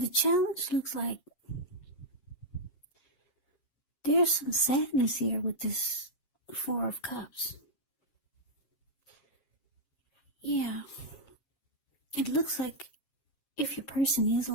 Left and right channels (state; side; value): late; right; 7.4 ms